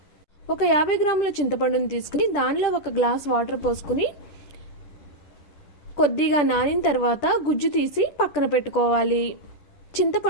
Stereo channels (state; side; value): late; right; 10 ms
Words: ఒక 50 గ్రాముల చింతపండుని తీసుకుని దానిలో 1 గ్లాస్ వాటర్ పోసుకుని కొద్దిగా నానిన తర్వాత గుజ్జు తీసి పక్కన పెట్టుకోవాలి.